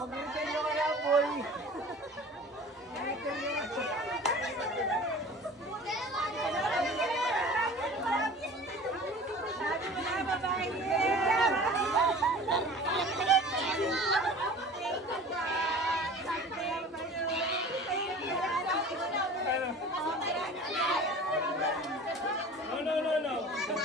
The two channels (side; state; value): both; normal; correlation 0.42